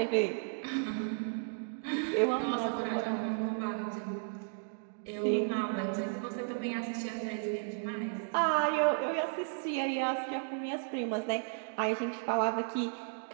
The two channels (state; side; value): silent; left; digital silence